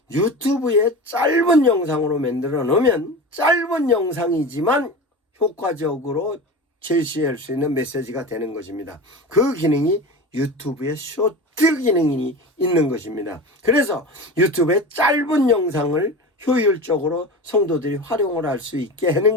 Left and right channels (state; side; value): normal; both; correlation 0.29